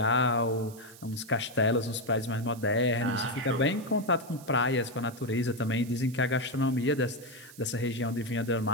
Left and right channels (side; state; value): right; noise; hiss, 20 dB below the sound